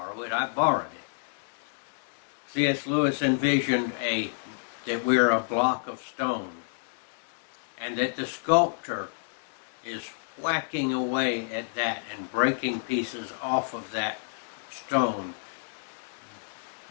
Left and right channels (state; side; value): silent; right; digital silence